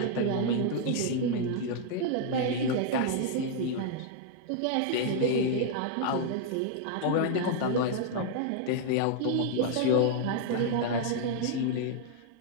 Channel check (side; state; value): both; different; correlation 0.00